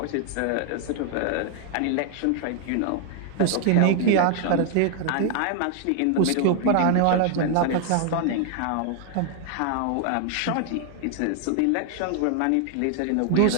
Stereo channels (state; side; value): different; both; correlation 0.00